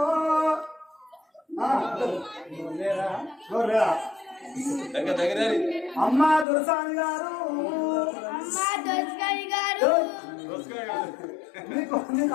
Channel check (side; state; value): right; drops out; at 6.5 s